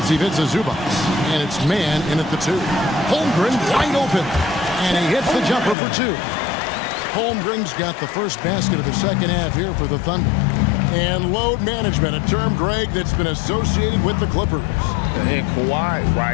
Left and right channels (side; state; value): right; drops out; at 5.8 s